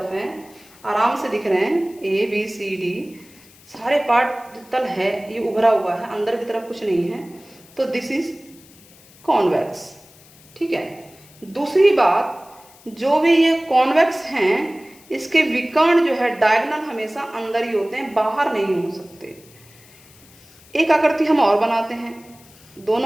हैं, आराम से दिख रहे हैं, ए बी सी डी सारे पार्ट तल है, ये उभरा हुआ है, अंदर की तरफ कुछ नहीं है, तो दिस इज कॉन्वेक्स, ठीक है। दूसरी बात, जो भी ये कॉन्वेक्स हैं इसके विकर्ण जो है डायगोनल हमेशा अंदर ही होते हैं, बाहर नहीं हो सकते। एक आकृति हम और बनाते हैं,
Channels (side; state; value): left; noise; hiss, 25 dB below the sound